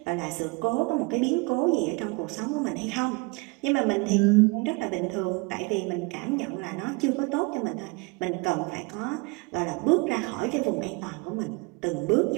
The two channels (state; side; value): quieter; left; 27.7 dB